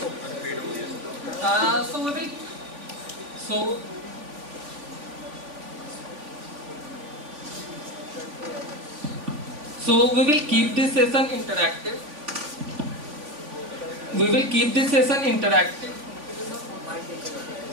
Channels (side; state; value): left; late; 3.5 ms